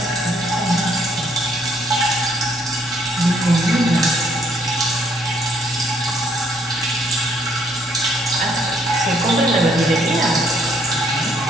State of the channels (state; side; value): normal; both; correlation 0.67